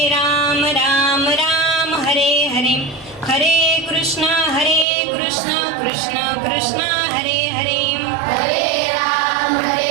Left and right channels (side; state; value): left; drops out; at 4.9 s